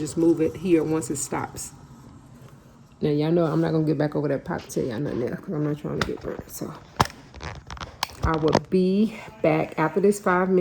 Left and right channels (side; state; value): both; identical; correlation 1.00